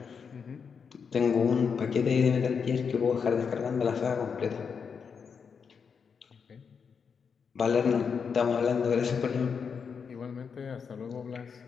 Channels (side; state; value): right; quieter; 6.2 dB